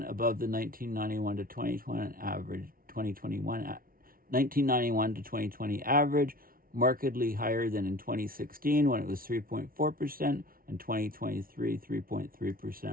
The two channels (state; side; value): late; left; 0.42 ms